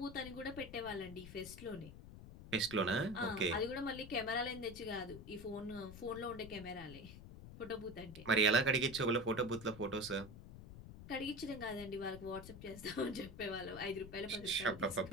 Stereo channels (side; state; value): left; noise; rumble, 13 dB below the sound